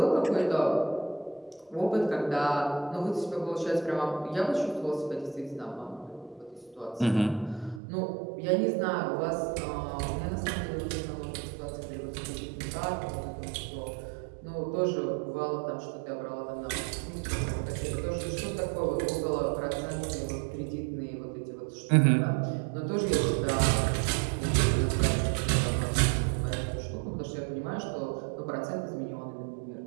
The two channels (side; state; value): left; drops out; at 7.8 s